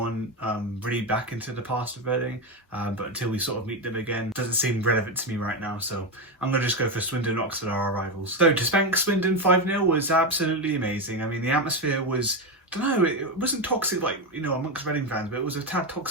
really back into the past of Reading, but until we sort of meet them again, it doesn't seem relevant to me right now, so I'm going to just go for Swindon and Oxford are our rivals. So to spank Swindon 5-0 was absolutely amazing. I mean, the atmosphere was, I don't know, it wasn't toxic like, you know, amongst Reading fans, but it was a tad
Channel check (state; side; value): normal; both; correlation 0.12